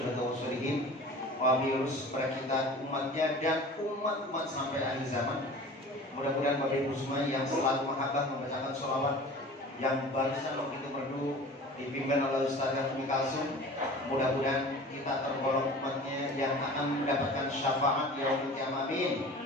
wa sholihin, wabius kepada kita umatnya dan umat-umat sampai akhir zaman. Mudah-mudahan Bapak Ibu semua yang selalu mahabbah membacakan sholawat yang barusan begitu merdu dipimpin oleh Ustazah Umi Kalsum. Mudah-mudahan kita tergolong umatnya yang akan mendapatkan syafaat yaumul qiyamah. Amin.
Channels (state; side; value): normal; both; correlation 0.40